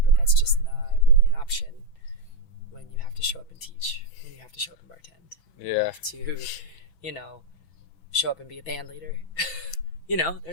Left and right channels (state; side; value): late; right; 6.0 ms